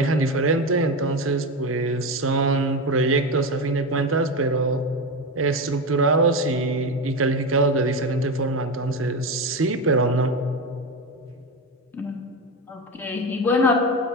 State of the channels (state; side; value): normal; both; correlation 0.17